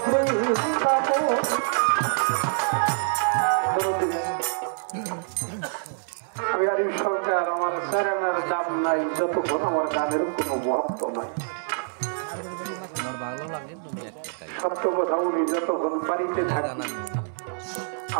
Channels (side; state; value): left; silent; 61 dB below the other